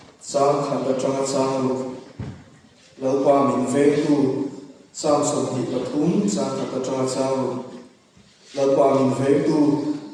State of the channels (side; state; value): both; identical; correlation 1.00